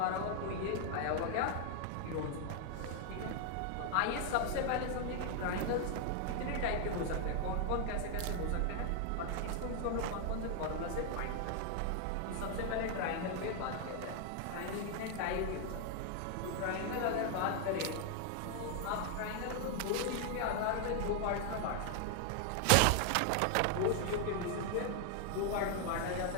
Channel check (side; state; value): both; different; correlation 0.00